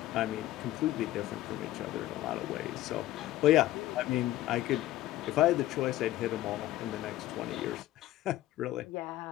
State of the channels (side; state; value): right; quieter; 15.1 dB